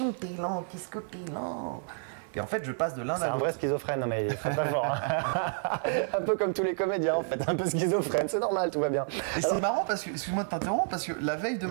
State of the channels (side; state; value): left; silent; 58 dB below the other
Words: T'es lent, qu'est-ce que t'es lent? Et en fait, je passe de l'un à l'autre. C'est un vrai schizophrène, non mais il est très fort. Hein. Un peu comme tous les comédiens, en fait. Un peu schizophrène, c'est normal, tout va bien. Et c'est marrant parce que, excuse-moi de t'interrompre, parce que la veille de